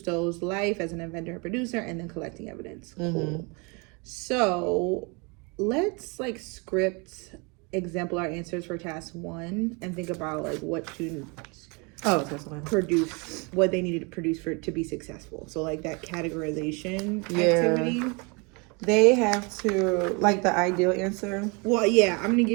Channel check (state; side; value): quieter; left; 30.7 dB